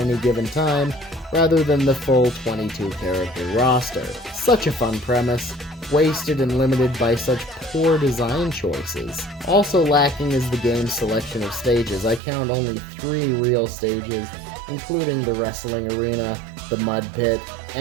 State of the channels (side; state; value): left; drops out; at 12.2 s